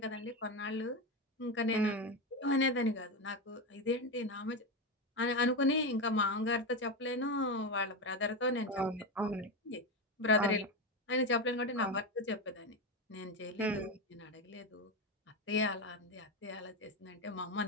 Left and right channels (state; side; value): normal; both; correlation 0.14